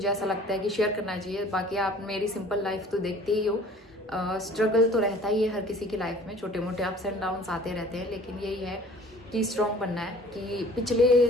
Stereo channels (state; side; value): normal; both; correlation 0.49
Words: ऐसा लगता है कि शेयर करना चाहिए। बाकी आप मेरी सिंपल लाइफ तो देखते ही हो, स्ट्रगल तो रहता ही है हर किसी की लाइफ में, छोटे मोटे अप्स एंड डाउन्स आते रहते हैं, लेकिन यही है कि स्ट्रॉन्ग बनना है। कि पिछले